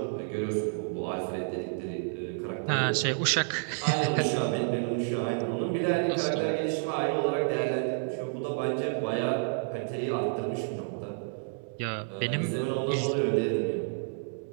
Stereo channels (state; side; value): silent; left; digital silence